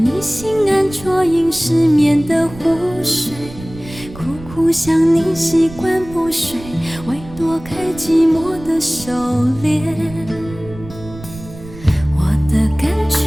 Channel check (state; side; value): noise; right; rumble, 16 dB below the sound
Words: 心安啜饮失眠的湖水，苦苦想你习惯不睡，为躲开寂寞的狩猎。我的感